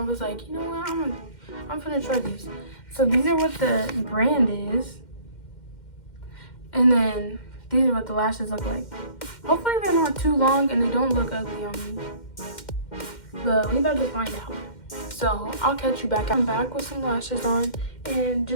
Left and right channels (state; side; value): late; right; 2.1 ms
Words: was like, you know what, I'm gonna try these. So these are what the brand is, and then these are what the lashes look like. Hopefully they're not too long and they don't look ugly on me, but we about to find out. So I'll catch you back. I'm back with some lashes on, and